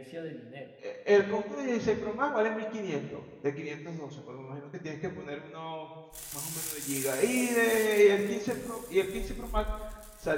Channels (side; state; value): both; identical; correlation 1.00